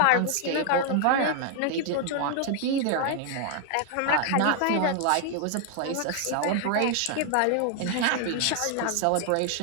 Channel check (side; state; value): both; different; correlation 0.00